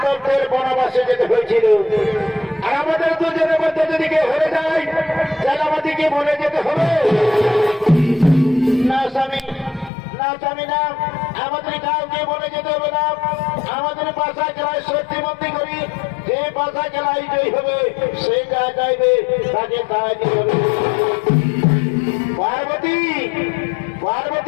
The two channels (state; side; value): drops out; right; at 9.9 s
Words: বনবাসে যেতে হয়েছিল। আর আমাদের দুজনের মধ্যে যদি কেউ হয়ে যায়, তাহলে আমাদেরকে বলে যেতে হবে। না স্বামী, না স্বামী, না, আমাদের কাউকে বলে যেতে হবে না। আমাদের বাসা খেলায় সত্যি বন্দী করি, যে বাসা খেলায় জয়ী হবে সে যা চাইবে তাকে তাই দিতে হবে। পার্বতী,